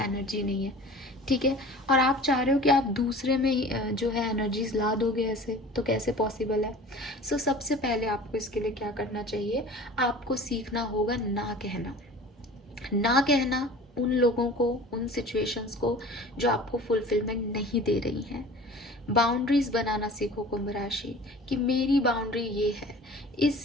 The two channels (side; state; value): both; normal; correlation 0.42